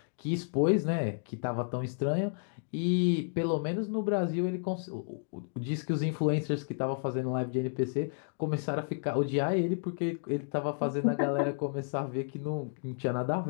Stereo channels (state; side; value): silent; right; digital silence